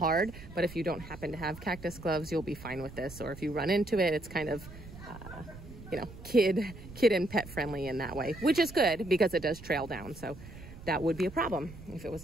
but if you don't happen to have cactus gloves, you'll be fine with this. Or if you run into it, it's kind of, you know, kid and pet friendly in that way, which is good because it does trail down. So that would be a problem if it was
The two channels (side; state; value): right; noise; rumble, 15 dB below the sound